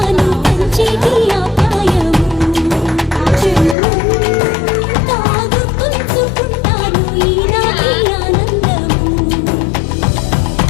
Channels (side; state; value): right; drops out; at 3.8 s